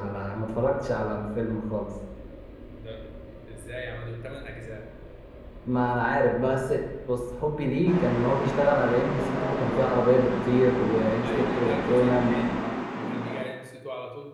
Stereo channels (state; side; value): identical; both; correlation 1.00